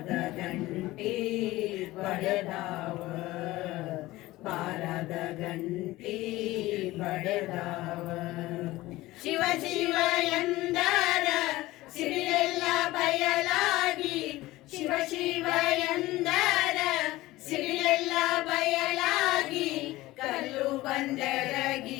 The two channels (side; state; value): right; quieter; 18.2 dB